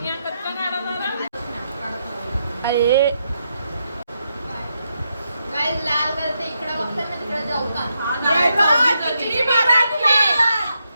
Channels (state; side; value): inverted; both; correlation -0.82